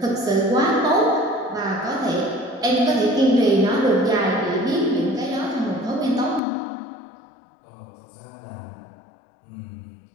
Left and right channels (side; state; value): right; drops out; at 6.4 s